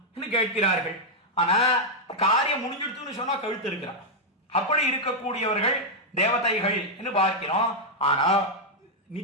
என்று கேட்கிறார்கள். ஆனா காரியம் முடிஞ்சிடுத்துன்னு சொன்னா கழுத்து இருக்கிறான். அப்படி இருக்கக்கூடியவர்கள் தேவதைகள் என்று பார்க்கிறோம். ஆனா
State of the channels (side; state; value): both; normal; correlation -0.02